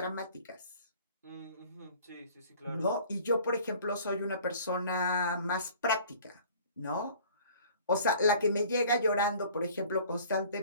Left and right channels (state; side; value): inverted; both; correlation -0.50